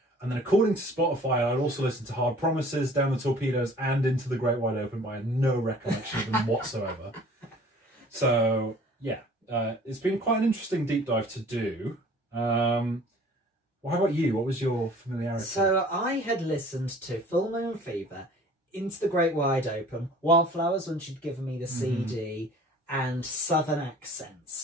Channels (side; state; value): both; normal; correlation 0.49